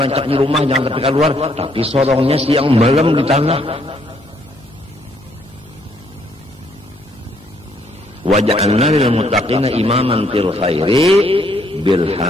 di rumah, jangan tapi keluar, tapi sorongnya siang malam di tanah. Waja'alna lil muttaqina imaman fil khairi bil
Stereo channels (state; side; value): normal; both; correlation 0.69